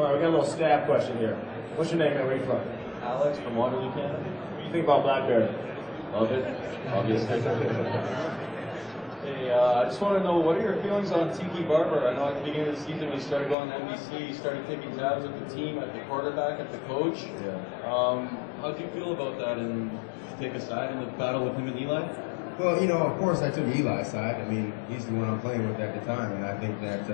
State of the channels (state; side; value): drops out; right; at 13.6 s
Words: right, we got a little stab question here. What's your name, man? Where are you from? Alex from Waterloo, Canada. What do you think about Blackberry? Love it, obviously. Hey, I just want to know, what are your feelings on Tiki Barber? I know at the beginning of the season when he started going to NBC, he started taking tabs at the team, at the quarterback, at the coach. Yeah. How do you feel about that, and take a side in the battle with him and Eli? Well, of course I took Eli's side. I mean, he's the one I'm playing with at the time, and I think that